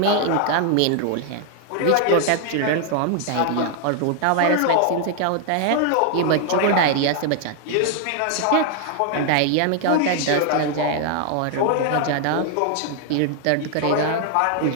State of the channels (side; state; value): both; different; correlation 0.00